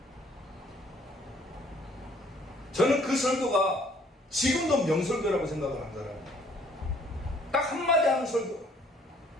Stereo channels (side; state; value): both; normal; correlation 0.61